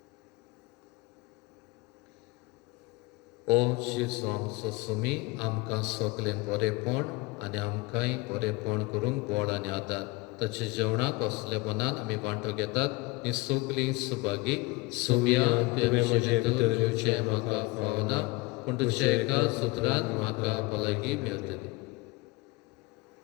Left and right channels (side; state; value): right; quieter; 23.1 dB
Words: ओ जेजू आमचो सुमी आमकां सगलें बरेपण आनी आमकांय बरेपण करूंक बळ आनी आदार ताचे जेवणाक असले मनान आमी वांटो घेतात ही सगलीं सुभागी सुम्या तुवें म्हजे भितर येवचें म्हाका फावना पूण तुज्या एका सुत्रान म्हाका भलायकी मेळटली